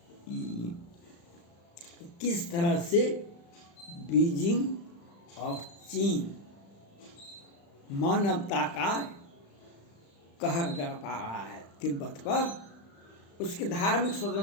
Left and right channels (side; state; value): right; late; 35 ms